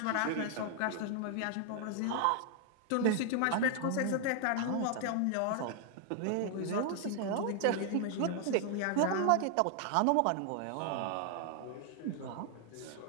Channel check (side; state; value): both; different; correlation 0.00